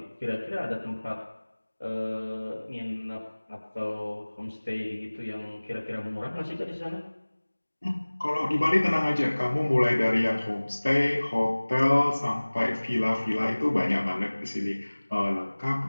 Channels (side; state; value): both; inverted; correlation -1.00